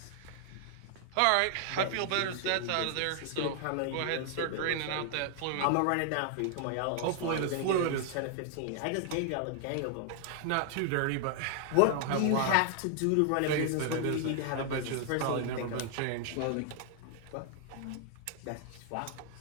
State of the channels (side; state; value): both; different; correlation 0.00